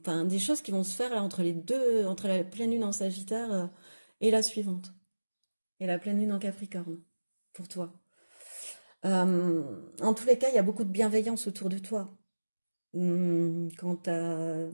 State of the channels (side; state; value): both; inverted; correlation -1.00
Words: des choses qui vont se faire là entre les deux, entre la pleine lune en Sagittaire, et la suivante, et la pleine lune en Capricorne, pour toi. En tous les cas, il y a beaucoup de bienveillance autour de toi. Quant à